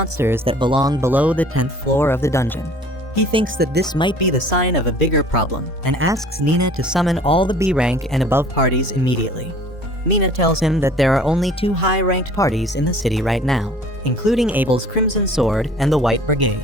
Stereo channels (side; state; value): both; normal; correlation 0.50